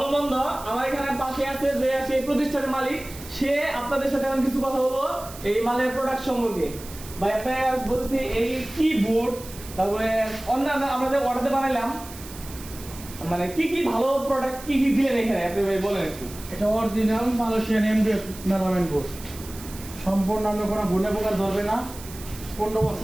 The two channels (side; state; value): right; noise; hiss, 16 dB below the sound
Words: মন্দ। আমার এখানে পাশে আছে যে সেই প্রতিষ্ঠানের মালিক, সে আপনাদের সাথে আমি কিছু কথা বলবো এই মালের প্রোডাক্ট সম্পর্কে। ভাই আপনারা বলতেছি এই কি বোর্ড, তারপরে অন্যান্য আমাদের অর্ডারে বানাইলাম, মানে কি কি ভালো প্রোডাক্ট কি কি দিলেন এখানে আপনি ভাই বলেন একটু। এটা অরিজিনাল মালয়েশিয়ান এমডিএফ মেলামেন্ট বোর্ড, সম্পূর্ণ আমরা কোনো গুণে প্রকার ধরবে না। 15